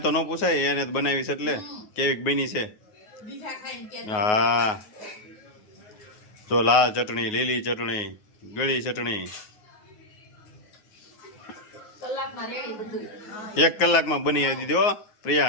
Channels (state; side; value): late; right; 9.5 ms